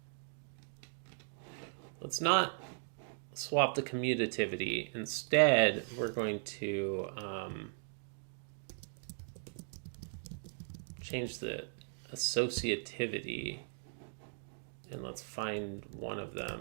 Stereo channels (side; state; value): left; silent; digital silence